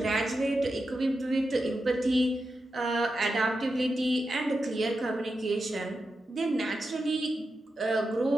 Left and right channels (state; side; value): normal; both; correlation 0.89